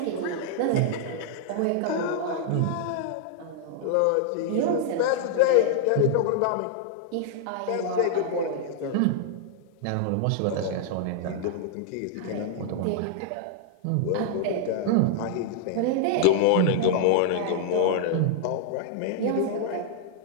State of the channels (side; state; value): both; different; correlation -0.01